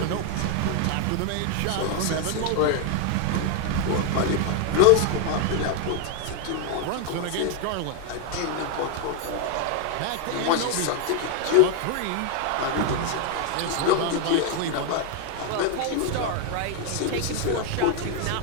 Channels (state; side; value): different; both; correlation 0.00